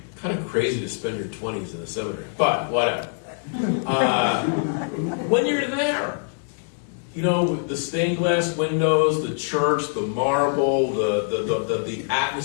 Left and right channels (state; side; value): silent; right; digital silence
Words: kind of crazy to spend your 20s in the seminary, but whatever. When you're there, the stained glass windows, the church, the marble, the